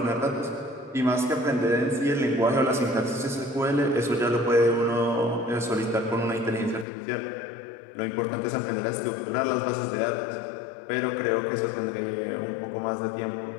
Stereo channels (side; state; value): right; drops out; at 6.9 s